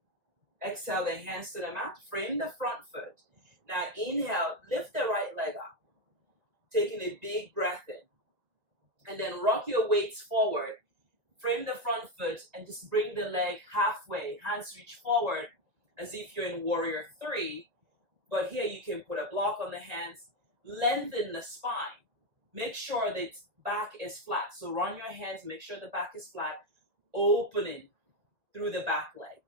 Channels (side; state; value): left; late; 1.8 ms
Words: Exhale the hands to the mat. Frame the front foot. Now inhale, lift the right leg up. Taking a big breath in. And then rock your weights forward. Frame the front foot and just bring the leg halfway. Hands reach forward as if you're in warrior 3. But here you can put a block on the hands. Lengthen the spine. Make sure that back is flat. So run your hands, make sure the back is flat, opening through the back leg.